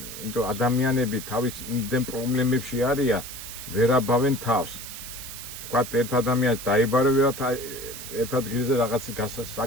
ადამიანები თავის იმდენ პრობლემებში არიან, ვერ აბავენ თავს. თქვათ, ერთ ადამიანს დაიბარებათ ერთ ადგილზე რაღაც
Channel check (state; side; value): noise; right; hiss, 10 dB below the sound